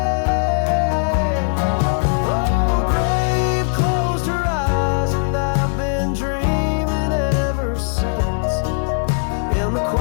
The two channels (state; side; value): silent; right; 66 dB below the other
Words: Oh, grave closed her eyes, and I've been dreaming ever since, in the